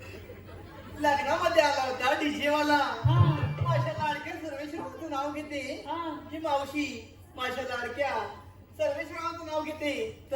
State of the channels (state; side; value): identical; both; correlation 1.00